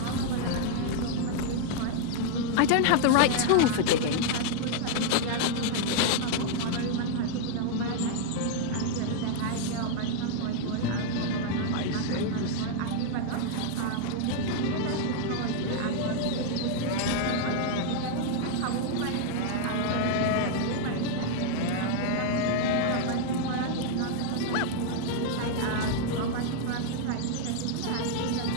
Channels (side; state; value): both; different; correlation 0.00